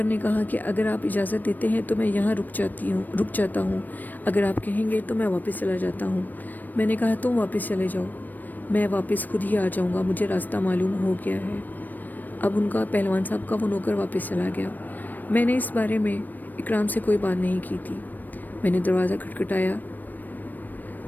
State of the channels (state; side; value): late; right; 0.088 ms